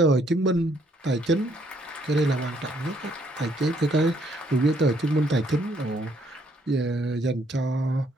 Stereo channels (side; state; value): both; normal; correlation 0.68